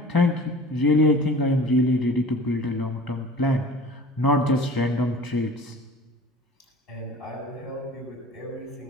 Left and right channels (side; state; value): both; normal; correlation 0.42